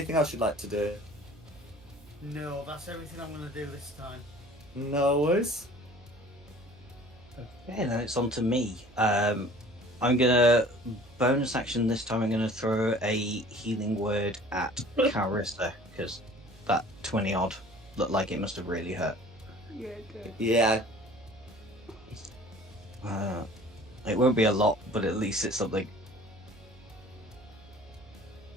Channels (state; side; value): noise; right; hum, 24 dB below the sound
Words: else you'd like to do? No, that's everything I'm going to do this time. No worries. Okay, then it's on to me. I'm gonna bonus action this time. I'm gonna throw a healing word at Carissa because that 20 odd looked like it must have really hurt. Yeah, good. Yeah. It won't be a lot, but at least it's something.